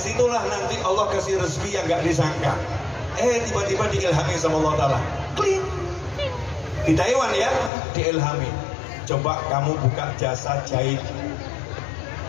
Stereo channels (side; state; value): right; drops out; at 7.7 s